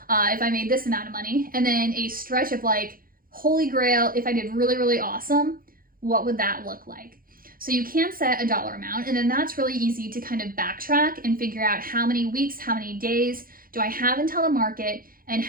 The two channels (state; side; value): late; left; 0.42 ms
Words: if I made this amount of money. And then a stretch of like, holy grail, if I did really, really awesome, what would that look like? So you can set a dollar amount, and then that's really easy to kind of backtrack and figure out how many weeks, how many days do I have until the market, and